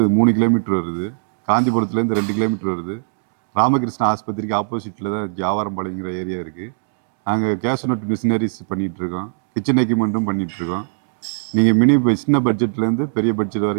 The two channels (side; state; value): left; silent; digital silence